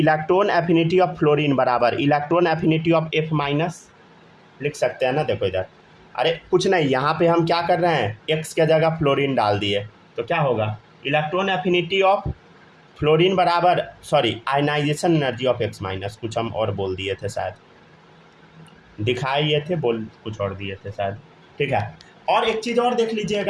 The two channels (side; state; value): both; identical; correlation 1.00